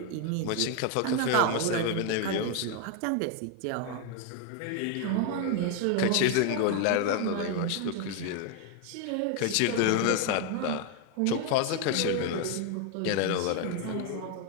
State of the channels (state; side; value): different; both; correlation 0.01